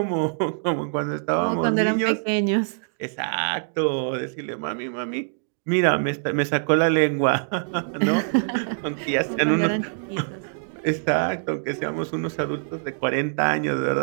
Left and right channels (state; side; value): silent; left; digital silence